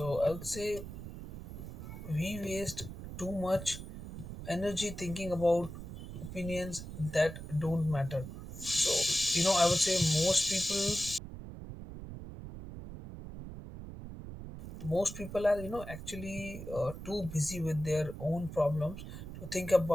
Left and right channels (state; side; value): noise; right; rumble, 10 dB below the sound